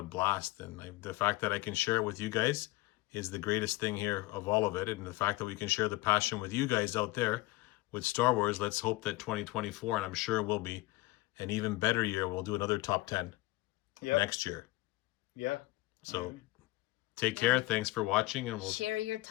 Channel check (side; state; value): right; quieter; 20.0 dB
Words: blast. And the fact that I can share it with you guys is the greatest thing here of all of it. And the fact that we can share the passion with you guys out there with Star Wars. Let's hope that 2024, and I'm sure it will be, an even better year. We'll do another top 10 next year. Yeah. So take care. Thanks for watching, and we'll share your